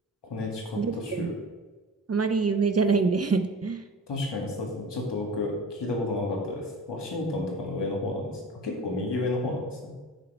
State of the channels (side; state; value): both; normal; correlation 0.38